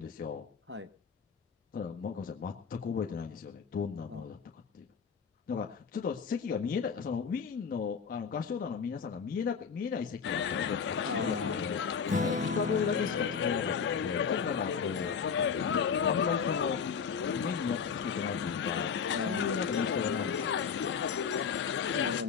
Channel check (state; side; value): quieter; right; 6.4 dB